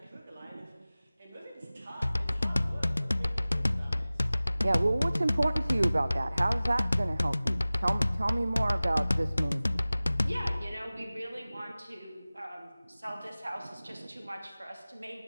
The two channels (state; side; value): inverted; both; correlation -0.98